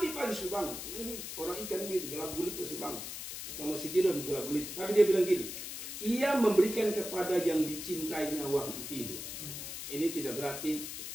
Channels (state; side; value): noise; left; hiss, 7 dB below the sound